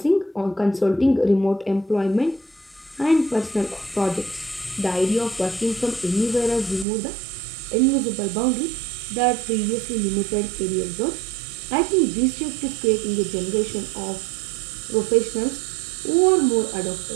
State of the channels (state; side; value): drops out; left; at 6.9 s